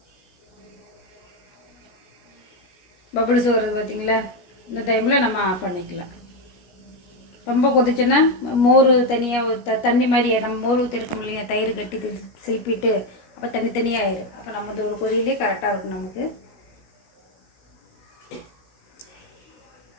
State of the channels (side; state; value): right; late; 16 ms